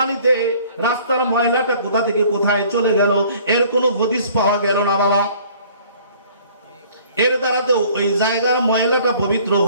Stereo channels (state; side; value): inverted; both; correlation -0.54